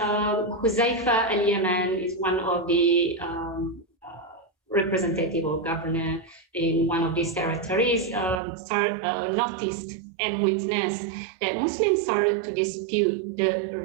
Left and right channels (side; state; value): left; drops out; at 8.4 s